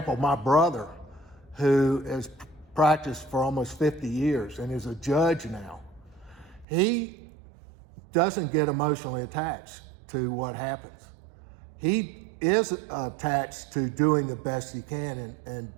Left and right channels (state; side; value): drops out; left; at 6.7 s